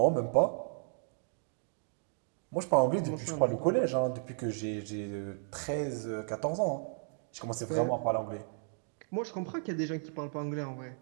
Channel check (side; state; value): left; silent; 55 dB below the other